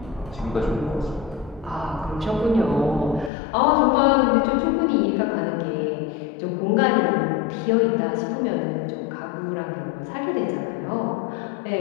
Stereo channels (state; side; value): drops out; right; at 3.3 s